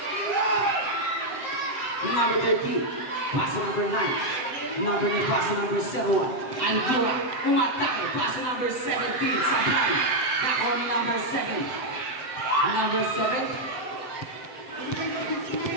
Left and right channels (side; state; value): right; late; 7.8 ms